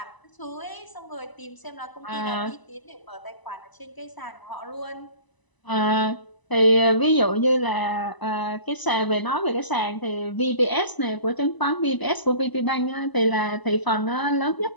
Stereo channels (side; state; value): right; late; 1.0 ms